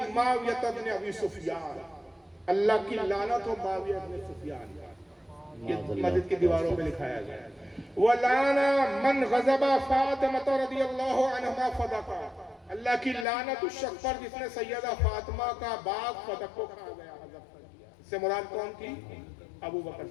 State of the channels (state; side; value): drops out; right; at 13.2 s